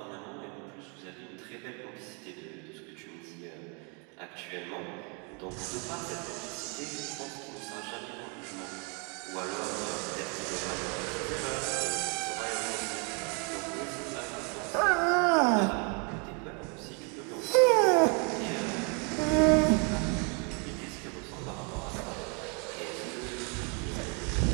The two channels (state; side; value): quieter; left; 34.8 dB